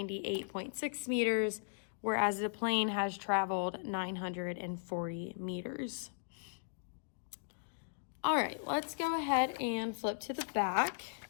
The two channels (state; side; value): silent; right; digital silence